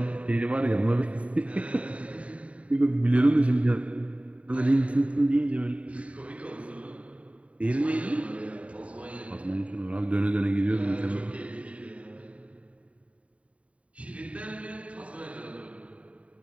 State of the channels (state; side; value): late; left; 0.065 ms